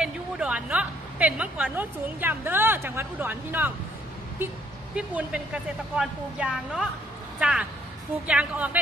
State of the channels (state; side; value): normal; both; correlation 0.67